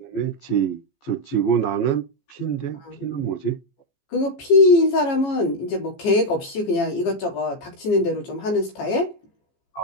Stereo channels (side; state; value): right; late; 15 ms